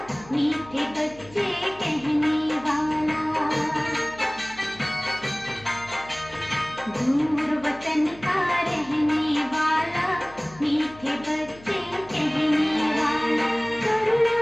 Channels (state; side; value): noise; left; hum, 22 dB below the sound